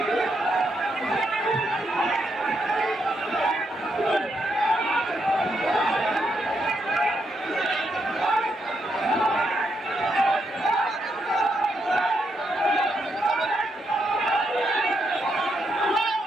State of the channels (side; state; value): both; normal; correlation 0.80